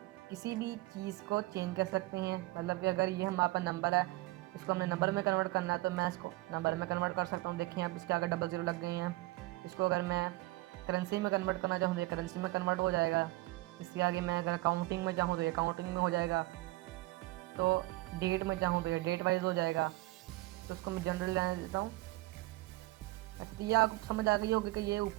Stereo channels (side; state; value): left; quieter; 20.3 dB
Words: किसी भी चीज़ को चेंज कर सकते हैं। मतलब कि अगर ये हमारे पास नंबर है, इसको हमने नंबर में कन्वर्ट करना है, तो मैं इसको नंबर में कन्वर्ट कर सकता हूँ। देखिए अब इसके आगे 00 लग गई हैं। इसको अगर मैं करेंसी में कन्वर्ट करना चाहूँ तो ये करेंसी में कन्वर्ट हो जाएगा। इसके आगे मैं अगर काउंटिंग में चाहूँ तो ये काउंटिंग में हो जाएगा। तो डेट में चाहूँ तो ये डेट वाइज हो जाएगा। तो उसको मैं जनरल लेने देता हूँ। अच्छा, तो ये आपको समझ आ गई होगी कि ये